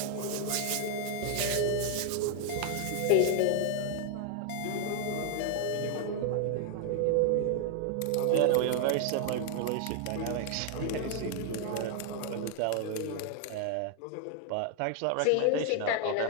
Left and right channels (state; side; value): different; both; correlation 0.00